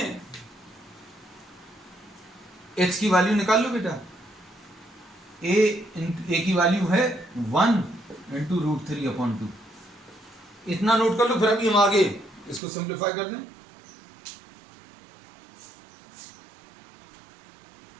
H की वैल्यू निकाल लो बेटा। A की वैल्यू है 1 × √3/2। इतना नोट कर लो, फिर अभी हम आगे इसको सिंप्लीफाई कर दें।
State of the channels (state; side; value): drops out; left; at 12.6 s